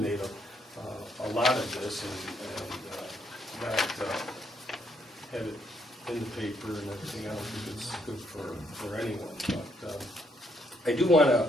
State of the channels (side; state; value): both; normal; correlation 0.73